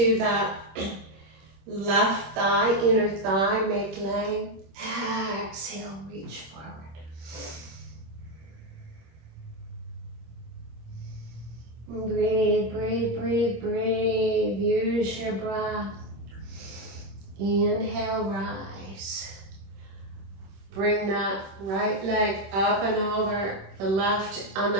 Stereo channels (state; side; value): late; left; 26 ms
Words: that left thigh, inner thigh, make length. Exhale, reach forward. Breathe, breathe, breathe, breathe. Use your breath. Inhale, rise. Bring that right leg up and over the left, on